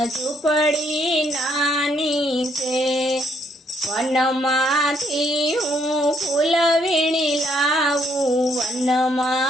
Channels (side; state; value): both; normal; correlation 0.70